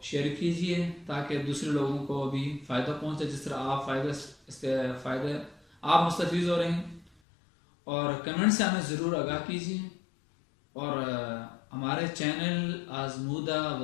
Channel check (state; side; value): drops out; right; at 7.1 s